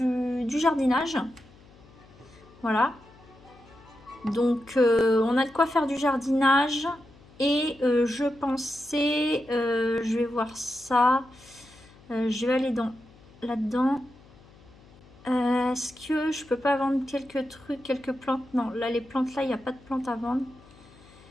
jardinage. Voilà. Donc on a de quoi faire du jardinage. Et je pensais, je vais voir ça. Je vais aller là-dedans. Est-ce que je peux pas vendre quelques trucs, quelques plantes? Non, là les plantes là, il n'y a pas de plantes à vendre.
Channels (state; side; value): noise; left; hum, 25 dB below the sound